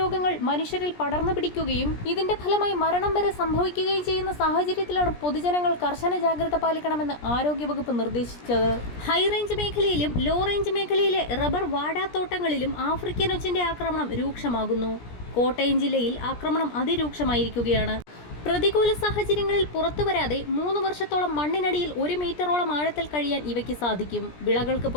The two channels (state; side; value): late; right; 17 ms